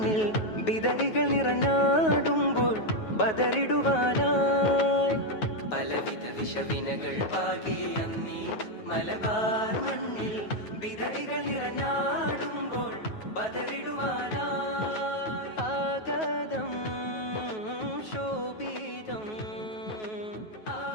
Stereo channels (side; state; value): right; late; 9.3 ms